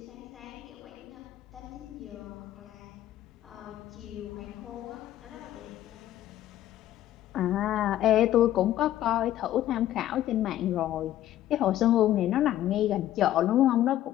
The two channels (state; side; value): quieter; right; 12.9 dB